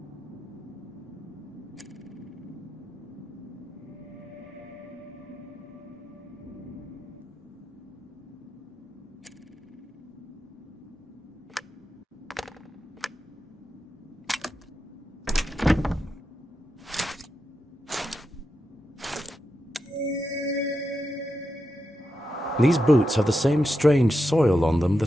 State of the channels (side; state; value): both; normal; correlation 0.88